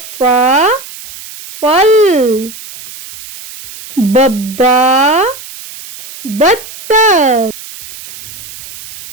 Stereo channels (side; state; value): right; noise; hiss, 15 dB below the sound